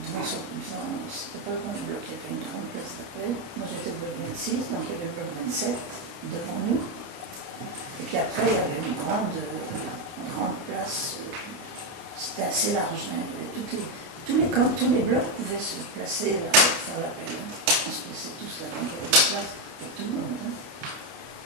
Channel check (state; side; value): late; left; 29 ms